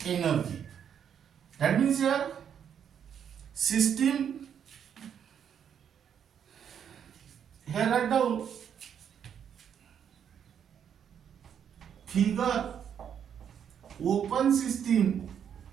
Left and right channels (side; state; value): left; quieter; 8.4 dB